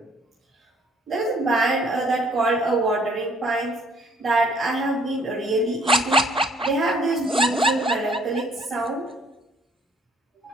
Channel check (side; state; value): both; normal; correlation 0.61